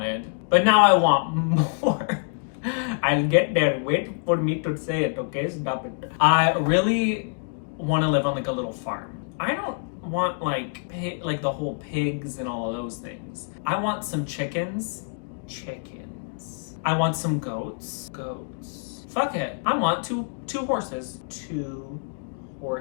but now I want more. I'll get there. Wait for me to say it, okay? Stop it. I really want to live on like a little farm. I don't want like the whole pigs and all of those things. I want some chickens. I want some goats. Fuck it. I want two horses. 2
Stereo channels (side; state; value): right; silent; digital silence